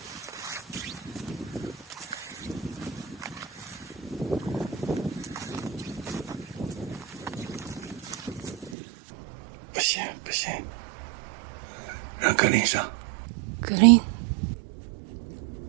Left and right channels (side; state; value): left; drops out; at 8.8 s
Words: 不行不行，让格林上。格林，